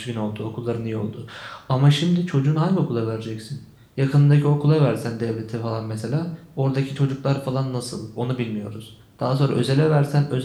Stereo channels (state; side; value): identical; both; correlation 1.00